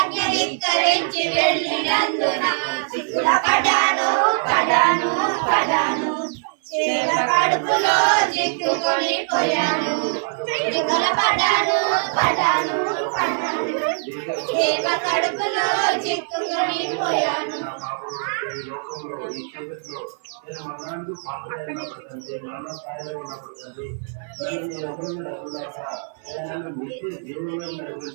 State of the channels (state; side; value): silent; left; 55 dB below the other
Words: ధిక్కరించి వెళ్ళినందున సిక్కుల పడాను పడాను పడాను చేప కడుపులో చిక్కుకొని పోయాను సిక్కుల పడాను పడాను పడాను చేప కడుపులో చిక్కుకొని పోయాను ఈ లోకంలో ఈ చీకట్లో నేను మరణానికి పాత్రగా ఉన్నప్పుడు తండ్రి మరణ స్థాయిలో ఉన్నప్పుడు తండ్రి నేను ఎవరిని నడుపులాక నన్ను నిత్య జీవంలో